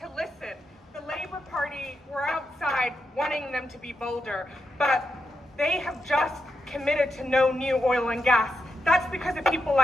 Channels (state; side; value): normal; both; correlation 0.86